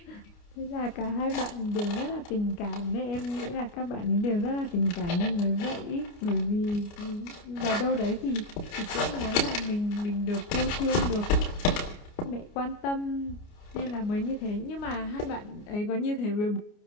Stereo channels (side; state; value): right; late; 29 ms